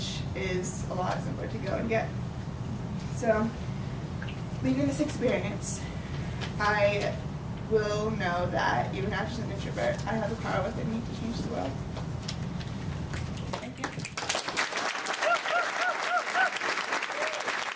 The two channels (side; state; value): both; identical; correlation 1.00